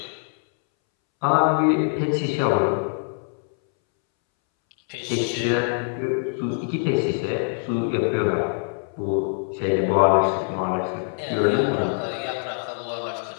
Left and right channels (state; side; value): silent; right; 63 dB below the other